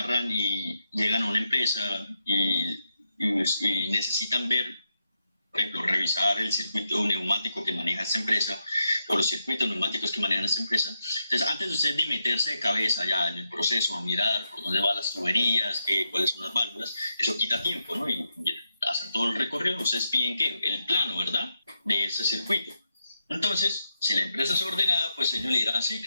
y llegan a una empresa y necesitan ver, por ejemplo, revisar el circuito neumático que maneja esta empresa o los circuitos neumáticos que manejan esta empresa. Entonces, antes de ustedes de meterse de cabeza ya en el proceso, a mirar por dónde van las tuberías, cuáles son las válvulas, eso quita tiempo, ¿no? Y hacer todo el recorrido, ustedes piden ¿qué? El plano, ¿verdad? De ese circuito. Entonces, si la empresa es ordenada, pues ellos le dirán, sí,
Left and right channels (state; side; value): inverted; both; correlation -0.84